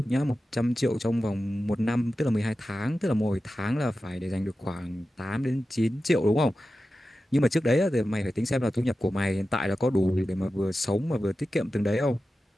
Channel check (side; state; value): both; normal; correlation 0.93